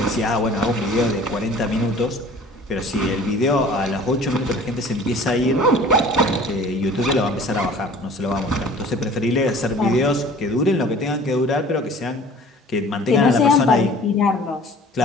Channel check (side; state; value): both; normal; correlation 0.47